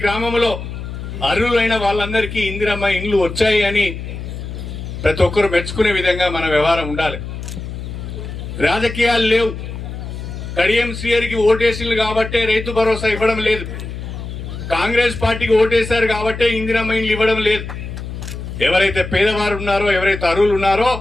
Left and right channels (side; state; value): left; noise; hum, 8 dB below the sound